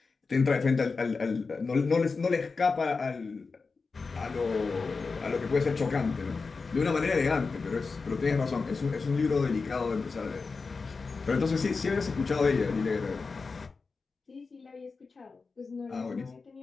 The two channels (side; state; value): right; quieter; 4.4 dB